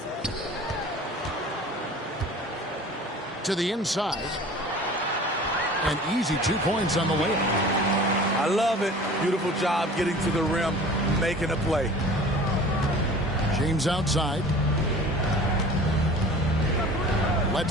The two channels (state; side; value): normal; both; correlation 0.43